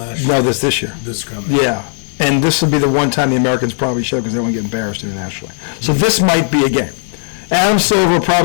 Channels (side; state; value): right; silent; digital silence